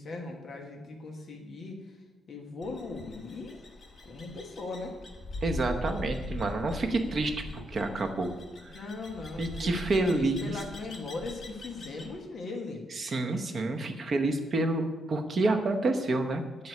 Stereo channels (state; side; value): normal; both; correlation 0.80